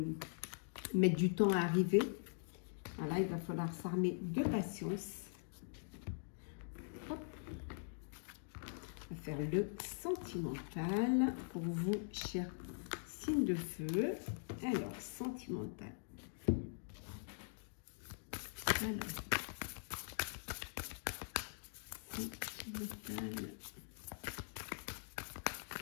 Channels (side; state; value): right; silent; digital silence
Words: mettent du temps à arriver. Voilà, il va falloir s'armer de patience. Hop. On va faire le sentimental pour vous, chers signes de feu. Alors, sentimental. Alors, sentimental.